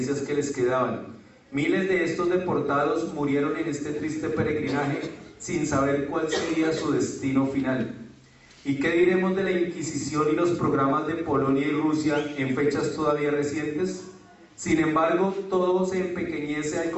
que les quedaban. Miles de estos deportados murieron en este triste peregrinaje sin saber cuál sería su destino final. ¿Y qué diremos de la Inquisición y los programas de Polonia y Rusia en fechas todavía recientes? Sin embargo, todo se empequeñece al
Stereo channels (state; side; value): identical; both; correlation 1.00